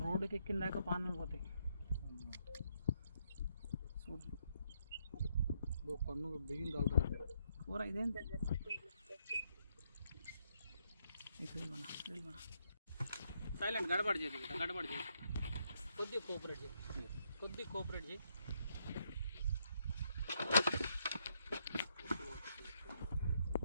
రోడ్డుకి ఎక్కిన దాకా పానాలు పోతాయి. పన్ను బిగింది అవుతుంది కూర ఇదేంటి. సైలెంట్ గడబడి చేయి, గడబడి చేయి, కొద్దిగా కోఆపరేట్ చేయి, కొద్దిగా కోఆపరేట్ చేయి.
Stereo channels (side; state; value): both; inverted; correlation -0.75